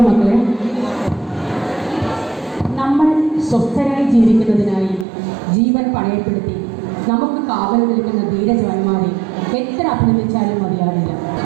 മക്കളെ. നമ്മൾ സ്വസ്ഥരായി ജീവിക്കുന്നതിനായി ജീവൻ പണയപ്പെടുത്തി നമുക്ക് കാവൽ നിൽക്കുന്ന ധീരജവാന്മാരെ എത്ര അഭിനന്ദിച്ചാലും മതിയാവില്ല.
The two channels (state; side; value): drops out; left; at 5.1 s